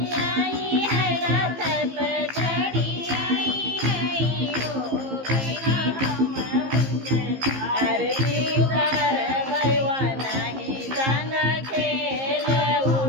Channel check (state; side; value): late; left; 15 ms